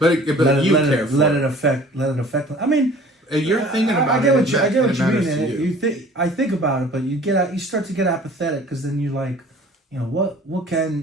let it affect them. I mean, you're thinking about I get what you mean. I think about it, but you start to get apathetic, because then you like, what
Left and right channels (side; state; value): both; normal; correlation 0.49